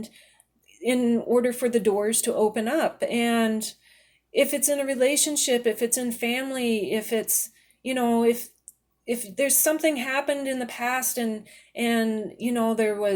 in order for the doors to open up. And if it's in a relationship, if it's in family, if it's, if there's something happened in the past, and there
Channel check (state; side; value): identical; both; correlation 1.00